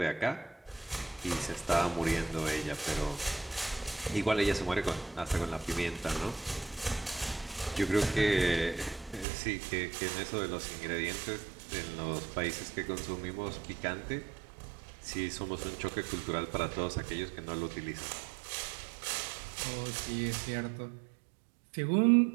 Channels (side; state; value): left; drops out; at 9.2 s